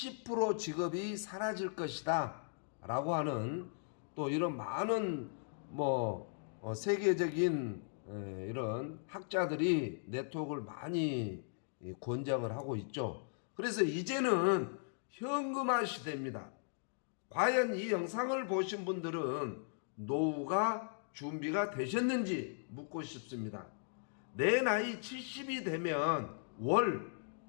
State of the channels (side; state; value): right; silent; digital silence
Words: 직업이 사라질 것이다 라고 하는 또 이런 많은 세계적인 이런 학자들이 네트워크를 많이 권장을 하고 있죠. 그래서 이제는 현금화 시대입니다. 과연 이 영상을 보신 분들은 노후가 준비가 되셨는지 묻고 싶습니다. 내 나이 70이 되면 월